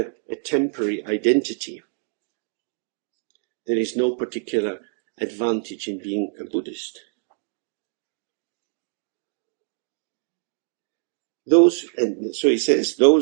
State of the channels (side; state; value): left; silent; 62 dB below the other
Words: temporary identity. There is no particular advantage in being a Buddhist. And so he says,